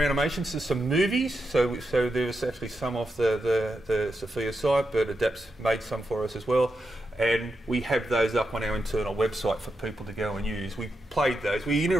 animations, so some movies. So there was actually some off the Sophia site, but ADAPS made some for us as well. And we have those up on our internal website for people to go and use. We played those. We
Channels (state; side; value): normal; both; correlation 0.86